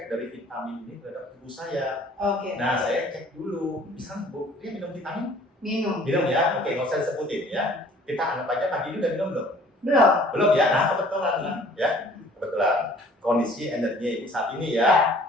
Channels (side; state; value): both; normal; correlation 0.54